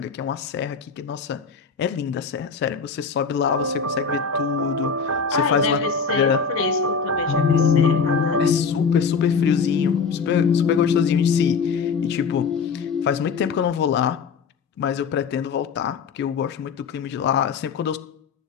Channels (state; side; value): quieter; right; 5.6 dB